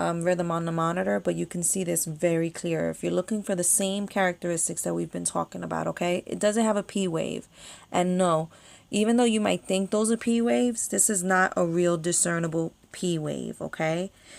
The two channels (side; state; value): both; identical; correlation 1.00